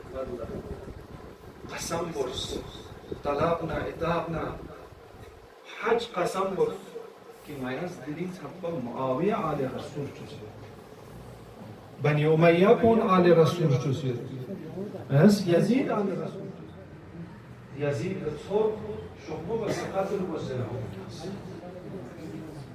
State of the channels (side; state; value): both; identical; correlation 1.00